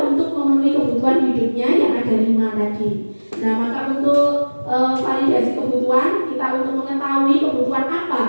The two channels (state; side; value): inverted; both; correlation -1.00